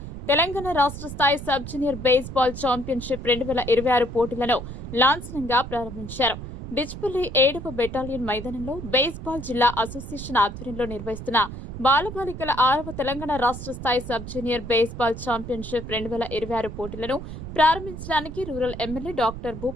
తెలంగాణ రాష్ట్ర స్థాయి సబ్ జూనియర్ బేస్బాల్ ఛాంపియన్షిప్ 2026 పోటీలను లాంఛనంగా ప్రారంభించారు. డిచ్పల్లి 7వ బెటాలియన్ మైదానంలో బేస్బాల్ జిల్లా అసోసియేషన్ ఆధ్వర్యంలో నిర్వహిస్తున్న బాలబాలికల 6వ తెలంగాణ రాష్ట్ర స్థాయి సబ్ జూనియర్ బేస్బాల్ ఛాంపియన్షిప్ 2026 పోటీలను ప్రారంభించడానికి rural MLA doctor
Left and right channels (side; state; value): right; noise; rumble, 10 dB below the sound